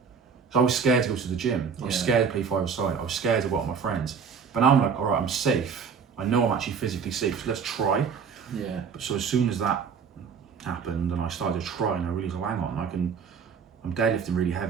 So I was scared to go to the gym. I was scared to play five-a-side. I was scared to go out with my friends. But now I'm like, all right, I'm safe. I know I'm actually physically safe. So let's try. Yeah. But so as soon as that happened and I started to try and I realised, oh, hang on, I'm deadlifting really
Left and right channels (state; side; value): quieter; left; 6.3 dB